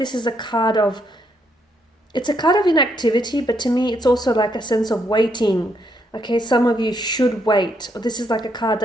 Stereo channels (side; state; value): both; normal; correlation 0.75